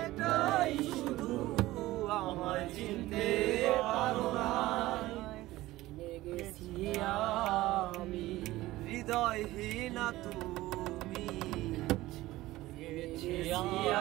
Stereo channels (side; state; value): left; quieter; 17.3 dB